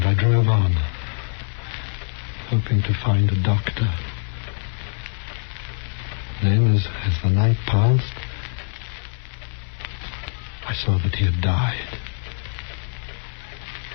I drove on, hoping to find a doctor. Then, as the night passed, I saw that he had died.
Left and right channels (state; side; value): silent; right; 63 dB below the other